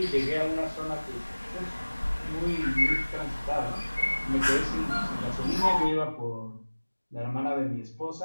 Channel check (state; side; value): inverted; both; correlation -1.00